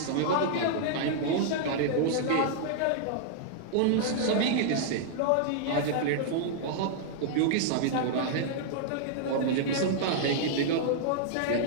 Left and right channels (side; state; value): both; different; correlation -0.01